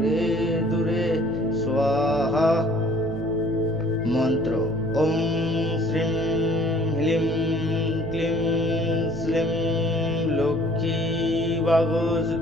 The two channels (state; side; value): noise; right; hum, 14 dB below the sound